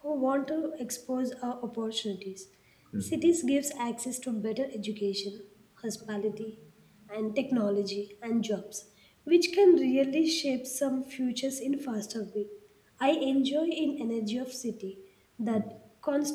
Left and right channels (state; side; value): identical; both; correlation 1.00